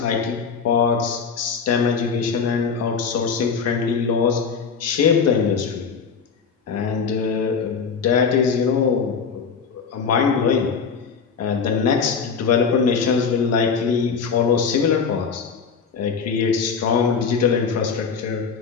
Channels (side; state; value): right; quieter; 5.8 dB